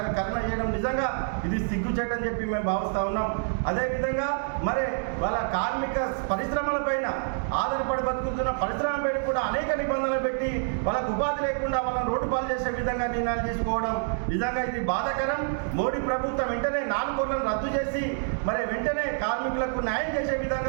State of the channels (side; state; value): left; silent; digital silence